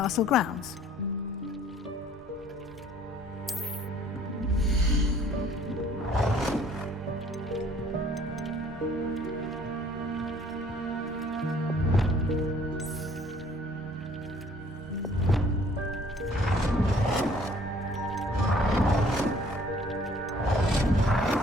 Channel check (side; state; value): both; normal; correlation 0.57